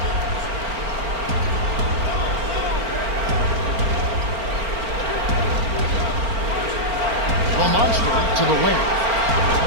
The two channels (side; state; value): left; late; 4.4 ms